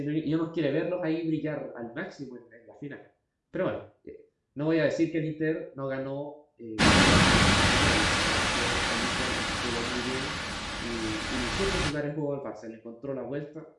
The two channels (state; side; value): identical; both; correlation 1.00